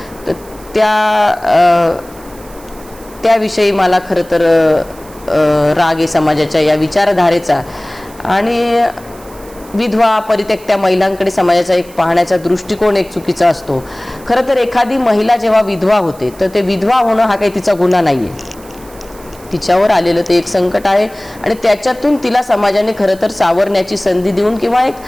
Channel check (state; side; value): noise; right; hiss, 23 dB below the sound